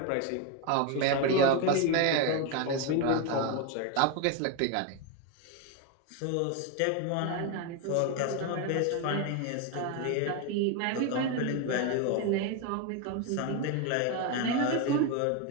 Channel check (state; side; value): different; both; correlation 0.02